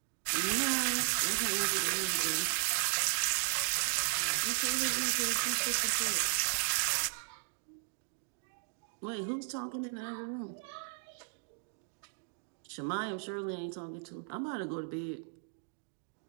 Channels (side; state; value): left; silent; 54 dB below the other